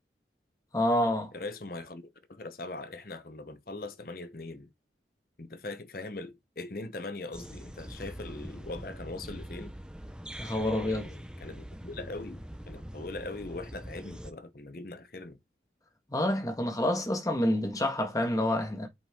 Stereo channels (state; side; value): normal; both; correlation 0.70